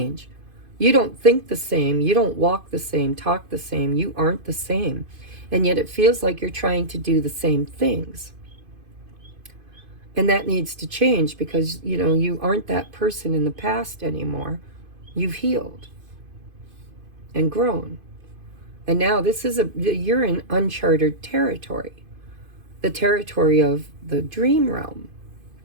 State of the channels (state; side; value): late; left; 2.5 ms